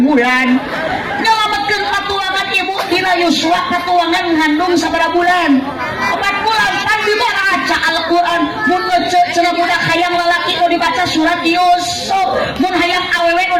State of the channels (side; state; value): both; identical; correlation 1.00